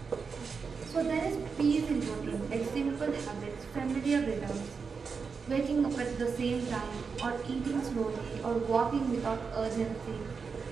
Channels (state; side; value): quieter; left; 5.4 dB